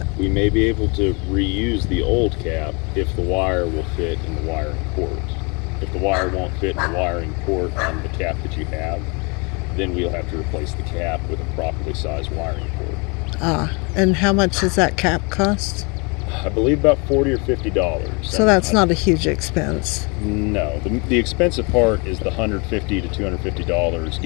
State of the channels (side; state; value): right; quieter; 30.8 dB